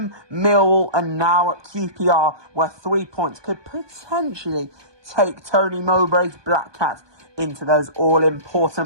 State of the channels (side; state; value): left; late; 1.2 ms